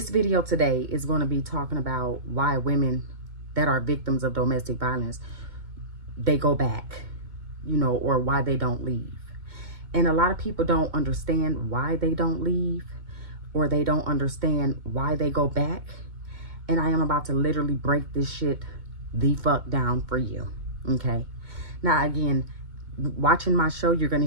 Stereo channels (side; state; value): left; late; 2.2 ms